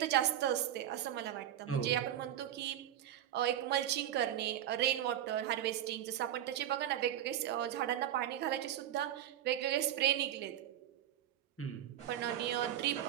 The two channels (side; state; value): left; quieter; 11.5 dB